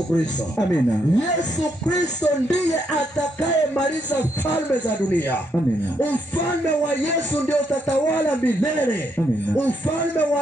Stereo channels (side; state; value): both; normal; correlation 0.76